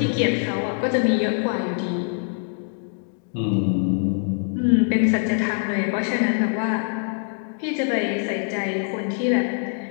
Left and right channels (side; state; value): right; silent; 56 dB below the other